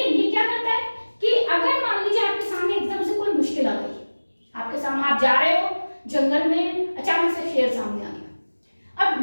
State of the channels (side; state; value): both; inverted; correlation -1.00